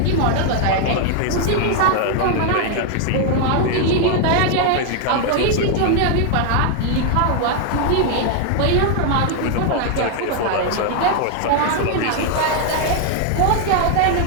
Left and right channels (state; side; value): different; both; correlation 0.00